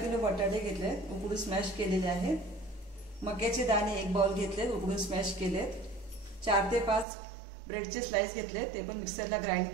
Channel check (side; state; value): left; drops out; at 7.1 s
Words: बटाटे घेतले, उकडून स्मॅश केलेले आहेत। मक्याचे दाणे एक बाउल घेतले, उकडून स्मॅश केलेत। 4 ते 5 ब्रेडचे स्लाइस घेतले, ते पण मिक्सरला ग्राइंड